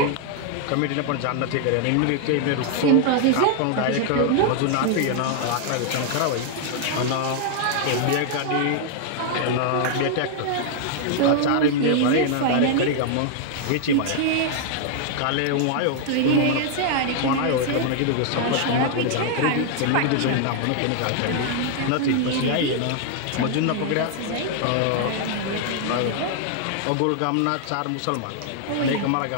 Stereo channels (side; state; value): both; different; correlation 0.00